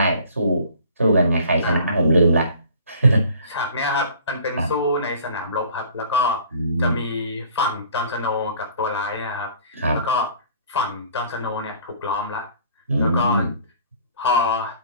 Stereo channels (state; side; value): inverted; both; correlation -0.51